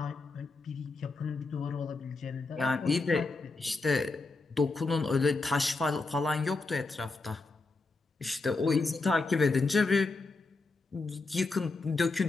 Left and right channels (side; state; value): right; quieter; 3.7 dB